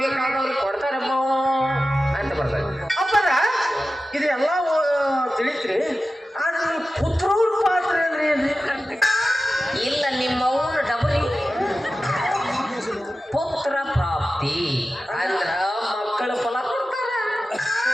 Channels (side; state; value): both; normal; correlation 0.94